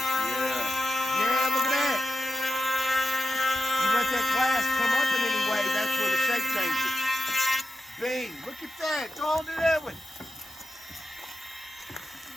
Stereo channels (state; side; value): normal; both; correlation 0.89